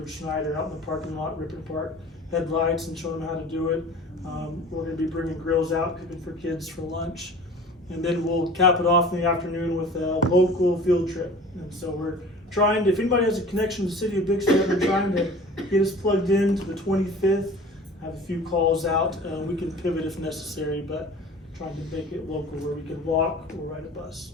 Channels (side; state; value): both; normal; correlation 0.43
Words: Schneider out in the parking lot, ripping apart headlights and showing them how to do it. We're gonna be bringing grills out, cooking for kids for lunch. And then we'll cap it off in the afternoon with a local field trip. And so we're trying to, if anybody has a connection to the city of Bixby, we're trying to get us plugged in to the 25th. Have a few calls out. We can pivot if necessary, but trying to make it local where we can walk or ride a bus.